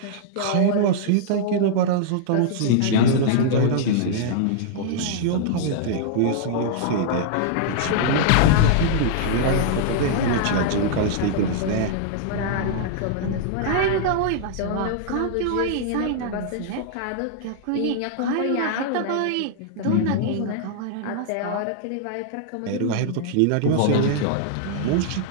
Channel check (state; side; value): different; both; correlation -0.01